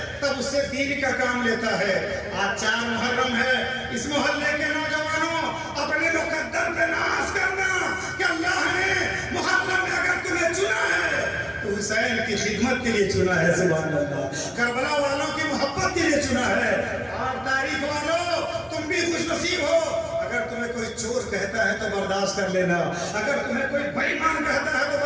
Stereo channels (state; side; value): identical; both; correlation 1.00